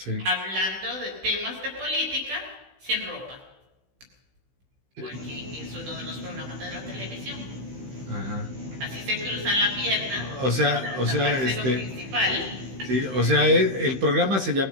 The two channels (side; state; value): left; late; 15 ms